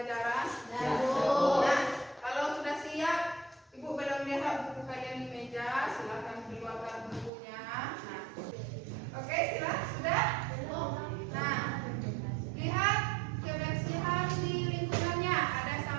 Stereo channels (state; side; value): drops out; left; at 7.3 s